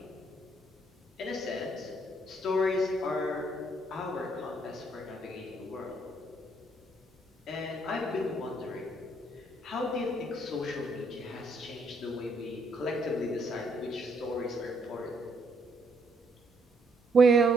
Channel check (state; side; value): normal; both; correlation 0.70